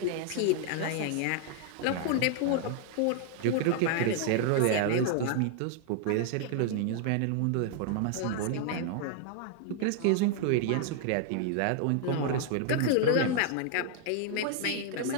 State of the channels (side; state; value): both; different; correlation 0.00